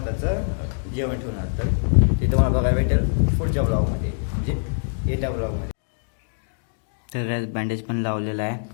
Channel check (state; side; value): silent; right; digital silence